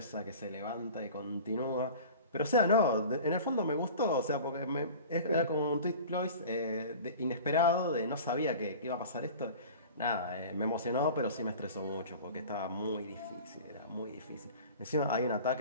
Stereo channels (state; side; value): inverted; both; correlation -0.39